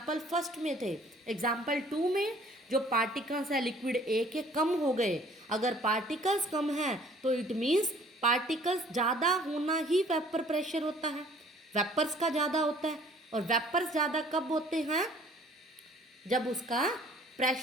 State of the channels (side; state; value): both; normal; correlation 0.55